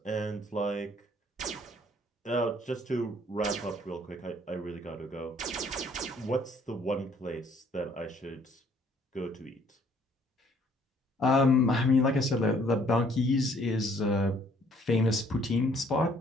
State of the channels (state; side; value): normal; both; correlation 0.62